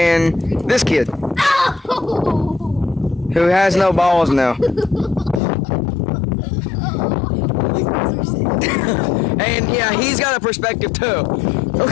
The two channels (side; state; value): right; drops out; at 5.4 s